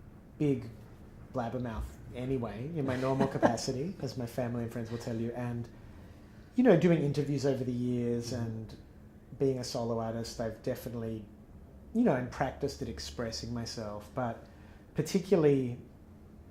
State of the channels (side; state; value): both; identical; correlation 1.00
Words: big blabbermouth anyway in my normal capacity, as my family and friends will tell you, and doing interviews over the years and being a solo artist, I've definitely, and practiced at expressing myself, but particularly